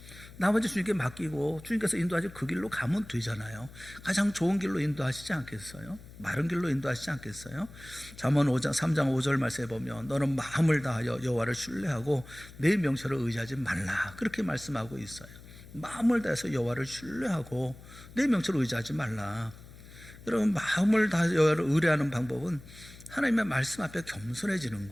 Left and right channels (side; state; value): left; noise; hum, 18 dB below the sound